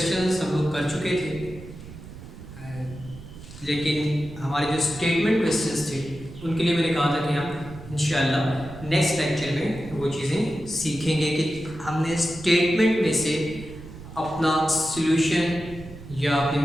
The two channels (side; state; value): right; noise; rumble, 15 dB below the sound